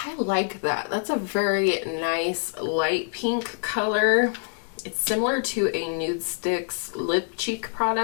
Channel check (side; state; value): right; silent; digital silence